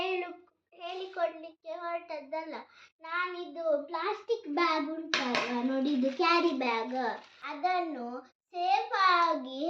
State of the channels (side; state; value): both; identical; correlation 1.00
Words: ಹೇಳಿಕೊಡ್ಲಿಕ್ಕೆ ಹೊರಟದ್ದಲ್ಲ. ನಾನಿದು ಪ್ಲಾಸ್ಟಿಕ್ ಬ್ಯಾಗ್ ಉಂಟಲ್ಲ ನೋಡಿ, ಇದು ಕ್ಯಾರಿ ಬ್ಯಾಗ್, ಅದನ್ನು ಸೇಫ್ ಆಗಿ